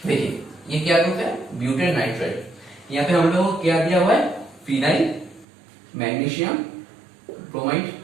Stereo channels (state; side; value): drops out; left; at 5.5 s